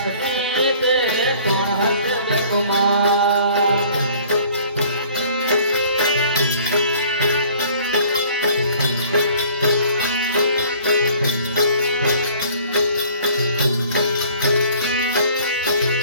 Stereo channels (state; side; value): inverted; both; correlation -0.52